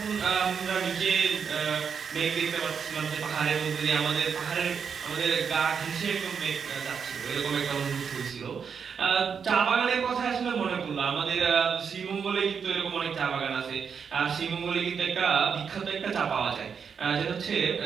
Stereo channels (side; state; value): left; quieter; 6.6 dB